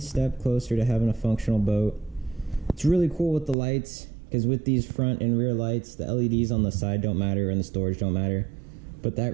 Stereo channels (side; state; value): left; drops out; at 3.6 s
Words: having a functional boat. It's really cool with the lights, because with these front and rear lights, the LEDs on the side don't matter and the storage don't matter. But that